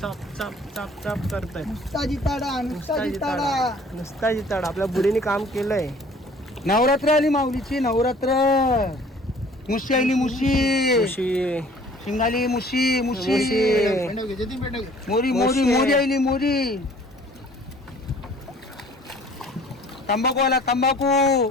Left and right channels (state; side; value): normal; both; correlation 0.53